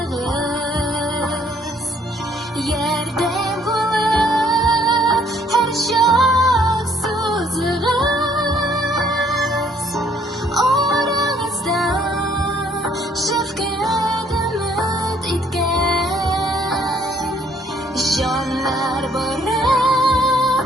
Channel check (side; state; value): both; normal; correlation 0.64